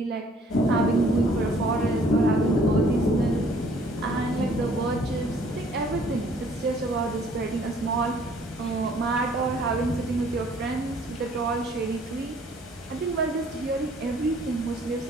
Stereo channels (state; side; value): normal; both; correlation 0.59